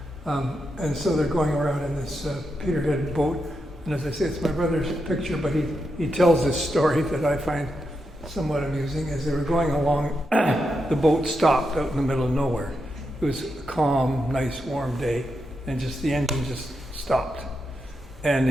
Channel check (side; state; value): both; normal; correlation 0.85